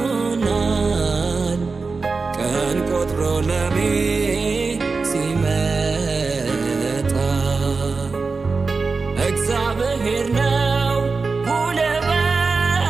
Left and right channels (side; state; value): left; quieter; 4.3 dB